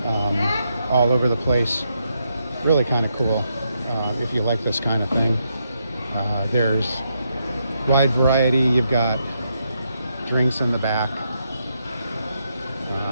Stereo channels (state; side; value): inverted; both; correlation -0.80